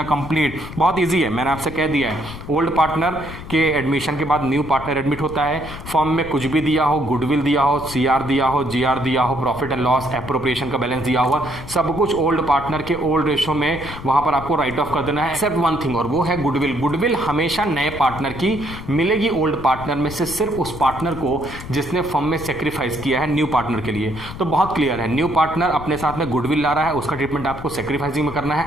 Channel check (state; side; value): noise; left; rumble, 12 dB below the sound